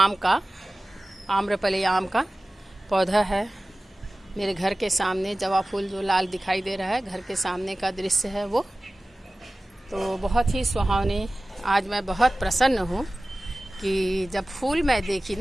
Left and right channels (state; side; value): normal; both; correlation 0.97